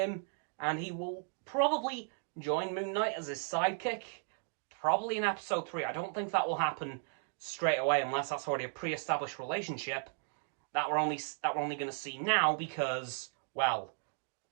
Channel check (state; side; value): silent; left; 54 dB below the other